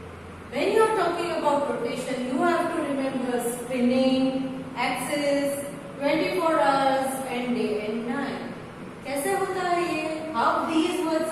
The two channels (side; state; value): both; identical; correlation 1.00